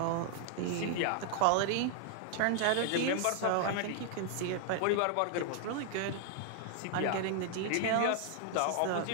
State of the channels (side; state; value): both; different; correlation 0.00